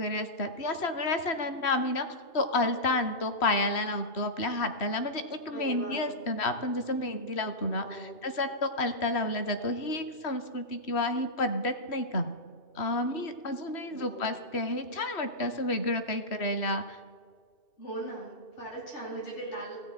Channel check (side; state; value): right; late; 2.7 ms